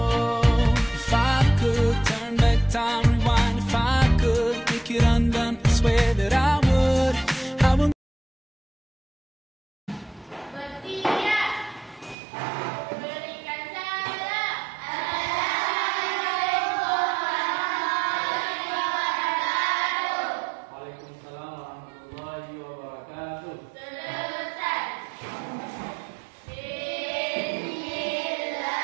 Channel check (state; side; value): drops out; left; at 12.2 s